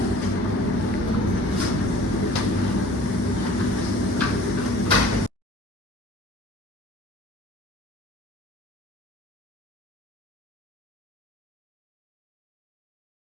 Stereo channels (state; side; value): normal; both; correlation 0.48